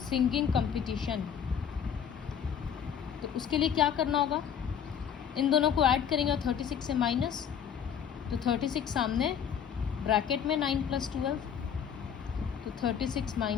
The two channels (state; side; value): quieter; right; 8.1 dB